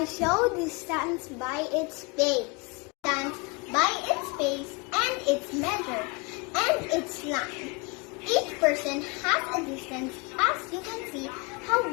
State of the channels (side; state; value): right; quieter; 28.7 dB